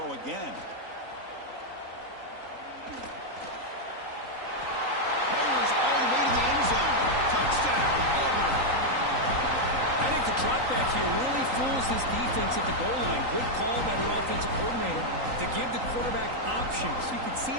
again. Fires all the way to the end zone. Touchdown, Auburn. I think the drop back here really fools this defense at the goal line. Good call by the offensive coordinator to give the quarterback options. You could see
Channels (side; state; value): left; late; 3.9 ms